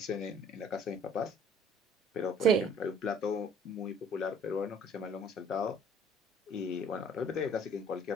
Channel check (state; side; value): normal; both; correlation 0.55